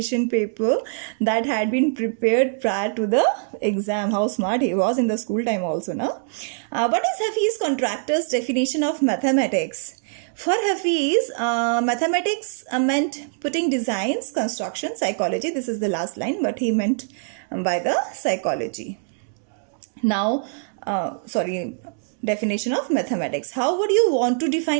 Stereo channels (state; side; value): silent; left; digital silence